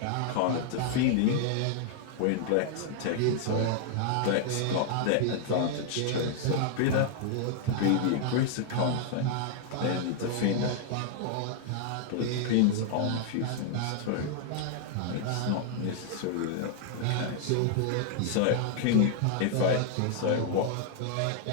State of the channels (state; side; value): different; both; correlation -0.01